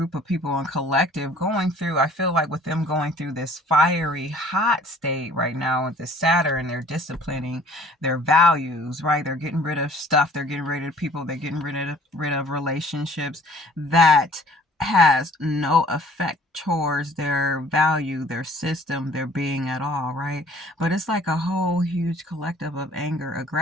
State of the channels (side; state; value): both; normal; correlation 0.54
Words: of people in collective going through, I feel like with them going through this fiery, hot state right now with the Saturn, they're disciplining their values, right? They're getting rid of stuff, they're getting rid of people, they're getting rid of relationships that has no effect towards their value, their system, their being at all, right? But it's like a whole huge collective of anger,